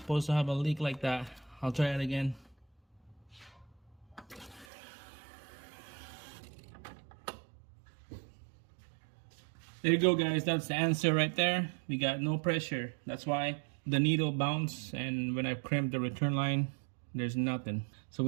to have a leak like that. I'll try it again. There you go, guys. That's the answer right there. We got no pressure. That's why the needle bounced, and when I crimped the return line, there's nothing. So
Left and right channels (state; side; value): drops out; left; at 4.7 s